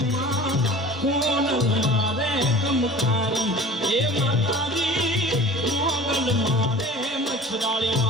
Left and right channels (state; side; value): normal; both; correlation 0.42